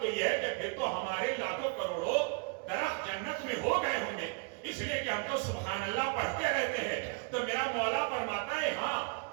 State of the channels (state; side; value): quieter; left; 35.4 dB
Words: یہ ہے کہ پھر تو ہمارے لاکھوں کروڑوں درخت جنت میں ہو گئے ہوں گے اس لیے کہ ہم تو سبحان اللہ پڑھتے رہتے ہیں. تو میرا مولا فرماتا ہے ہاں